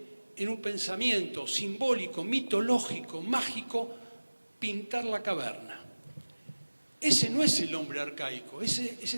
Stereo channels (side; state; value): both; inverted; correlation -1.00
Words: en un pensamiento simbólico, mitológico, mágico, pintar la caverna. Ese no es el hombre arcaico, ese